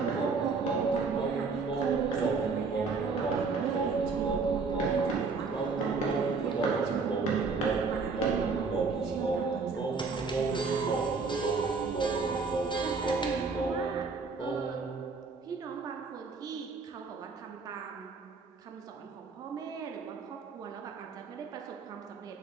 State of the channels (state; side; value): quieter; left; 4.6 dB